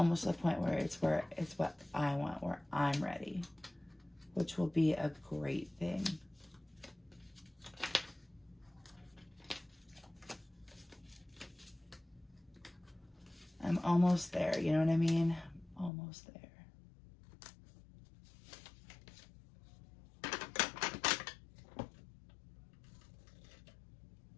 at the point where it's what I want, where I'm ready, which will be a great thing. I'm almost there, you know what I mean? Almost there.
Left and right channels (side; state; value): right; drops out; at 15.9 s